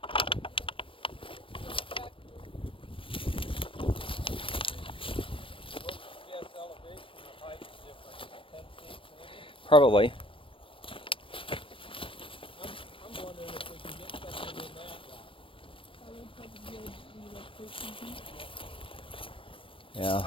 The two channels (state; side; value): late; right; 0.25 ms